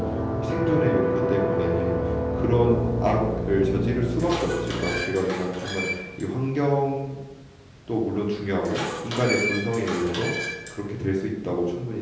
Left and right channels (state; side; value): identical; both; correlation 1.00